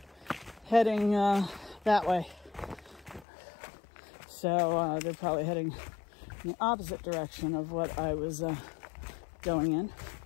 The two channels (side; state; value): right; drops out; at 3.2 s